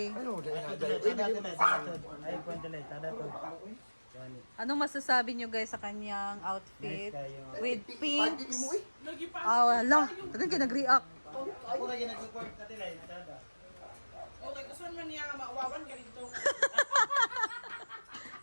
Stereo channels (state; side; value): inverted; both; correlation -1.00